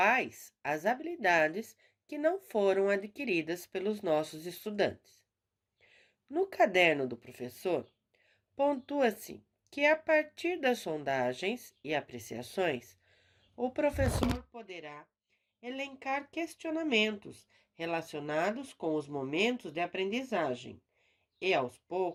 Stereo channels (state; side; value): identical; both; correlation 1.00